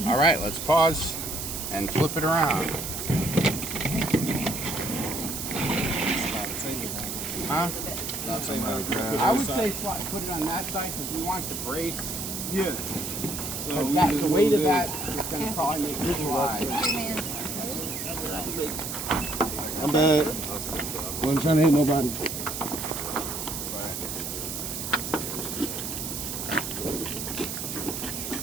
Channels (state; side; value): noise; right; hiss, 5 dB below the sound